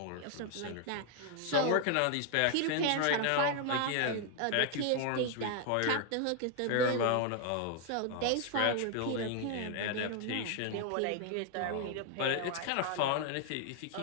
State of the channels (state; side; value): different; both; correlation 0.00